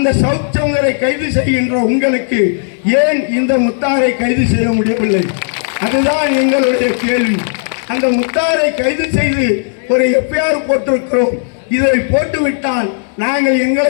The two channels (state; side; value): silent; right; digital silence